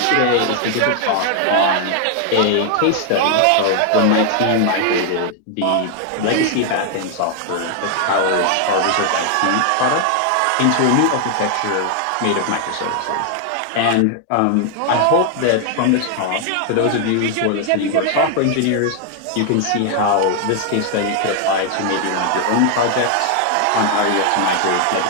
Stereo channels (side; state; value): both; different; correlation 0.00